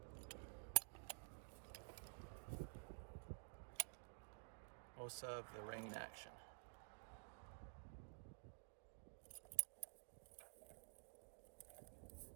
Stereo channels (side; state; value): left; silent; digital silence